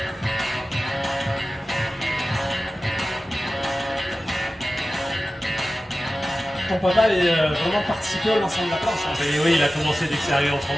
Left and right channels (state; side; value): normal; both; correlation 0.95